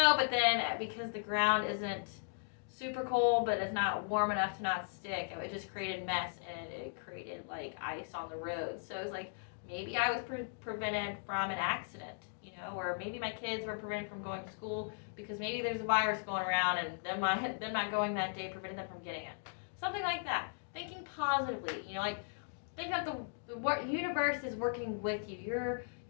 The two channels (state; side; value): silent; right; digital silence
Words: but then because the ground isn't super cold, but it's not warm enough to not stick, it just created mess, and it created like ice on the road. So it was like, maybe I was prevented from an accident, or maybe my kids were prevented from going to school because maybe there's a virus going around, and them not going that day prevented them from getting it. Something like that. Thinking positively, think that the universe is working with you. You're